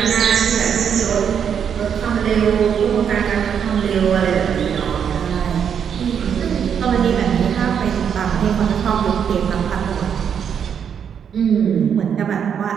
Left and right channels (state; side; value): quieter; left; 7.8 dB